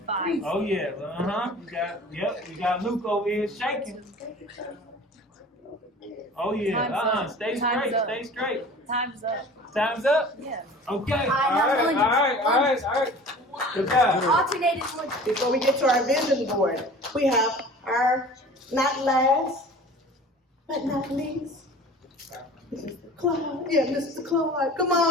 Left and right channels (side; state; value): both; normal; correlation 0.42